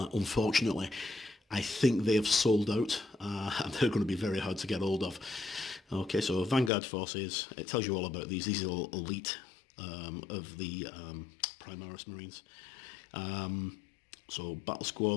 I think they have sold out, and they're going to be very hard to get hold of. Okay, so Vanguard Forces, it tells you all about these. These are elite of the Primaris Marines. So battle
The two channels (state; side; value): drops out; right; at 6.7 s